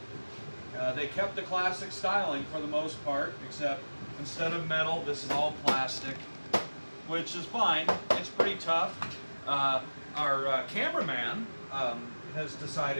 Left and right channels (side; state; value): both; inverted; correlation -1.00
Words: They kept the classic styling for the most part, except instead of metal, this is all plastic, which is fine. It's pretty tough. Our cameraman has